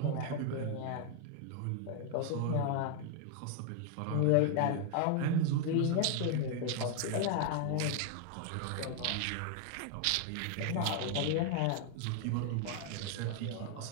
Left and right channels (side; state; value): both; different; correlation 0.00